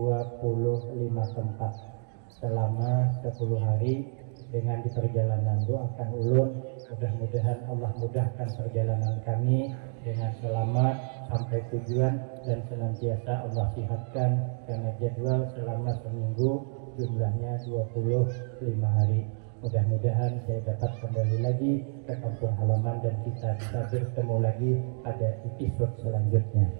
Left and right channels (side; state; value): left; silent; digital silence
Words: tempat selama 10 hari. Dengan di perjalanan doakan ulun, mudah-mudahan Allah mudahkan perjalanan kami dengan selamat sampai tujuan dan senantiasa Allah sihatkan, karena jadwal selama seminggu jumlahnya 25 hari. Mudah-mudahan saya dapat kembali lagi ke kampung halaman dan kita bisa bertemu lagi pada episode selanjutnya.